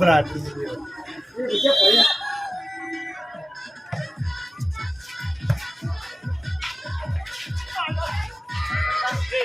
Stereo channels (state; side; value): normal; both; correlation 0.96